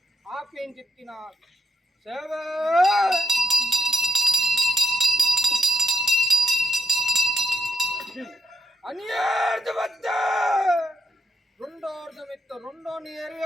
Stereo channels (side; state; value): both; normal; correlation 0.83